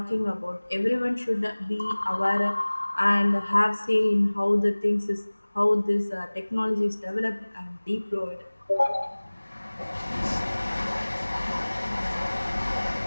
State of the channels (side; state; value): both; inverted; correlation -1.00